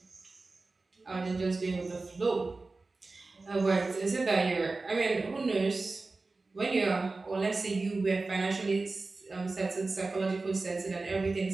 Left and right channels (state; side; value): quieter; left; 3.6 dB